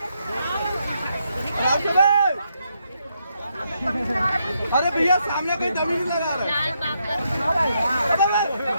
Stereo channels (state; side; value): inverted; both; correlation -0.79